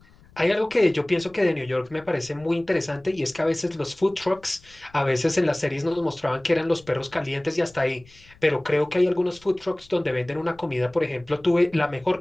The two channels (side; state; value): left; noise; rumble, 27 dB below the sound